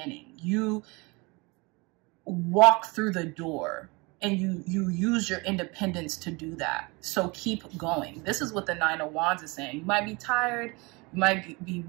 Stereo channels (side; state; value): left; quieter; 26.7 dB